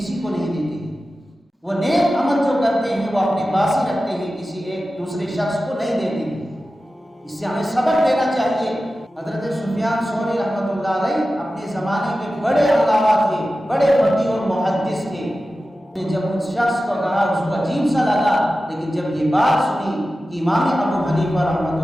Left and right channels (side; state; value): both; normal; correlation 0.94